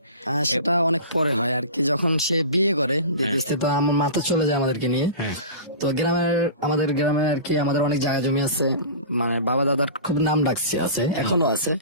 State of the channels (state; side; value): inverted; both; correlation -0.36